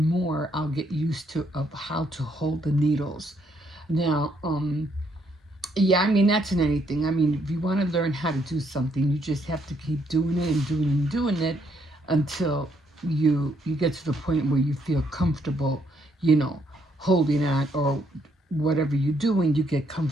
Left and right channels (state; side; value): normal; both; correlation 0.72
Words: more I'll get used to of how to hold the needles. Now, yeah, I mean that's in anything. I mean, if you want to learn how to do something, you just have to keep doing it and doing it until you get to the point where you feel comfortable, you know, holding on, or whatever you're doing, you get